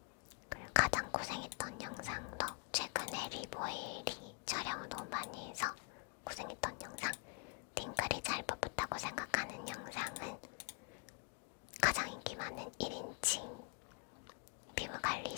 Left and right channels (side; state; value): right; quieter; 34.4 dB